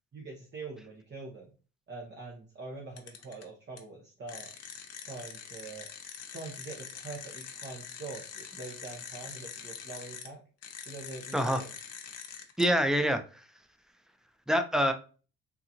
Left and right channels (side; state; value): both; normal; correlation 0.69